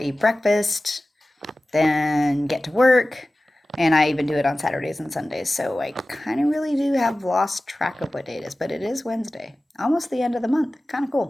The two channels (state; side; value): normal; both; correlation 0.96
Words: breakfast, then get to work. And I even do it on Saturdays and Sundays. So I kind of really do have lost track of what day it is, but it is Wednesday, almost the end of the month. Kind of